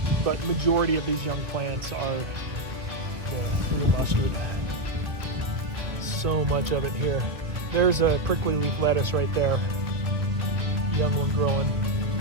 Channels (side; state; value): left; late; 2.2 ms